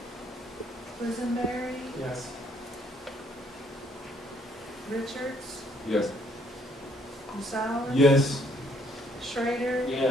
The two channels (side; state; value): both; normal; correlation 0.66